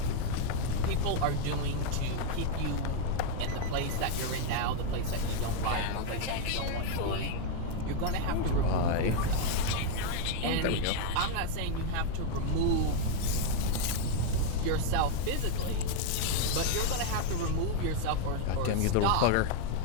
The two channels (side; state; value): both; different; correlation 0.00